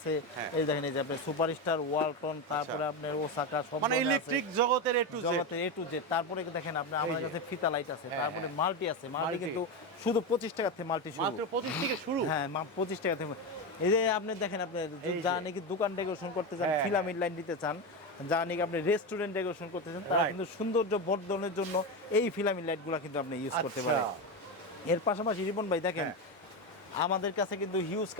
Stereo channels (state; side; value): normal; both; correlation 0.15